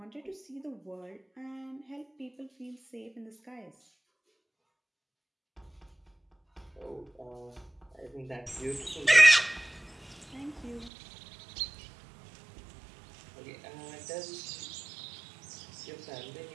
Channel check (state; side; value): drops out; left; at 10.9 s